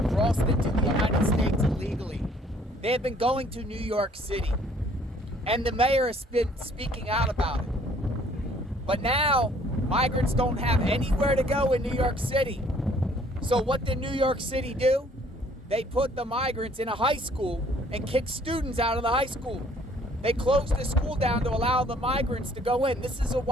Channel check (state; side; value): normal; both; correlation 0.59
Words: crossed into the United States illegally. They have been going to New York City, and the mayor has been speaking out about it. But now, migrants don't have anywhere to go in New York City. So what did New York City do? They put the migrants in a high school and kicked students out of the high school. They closed the school down to allow the migrants to go in. This is a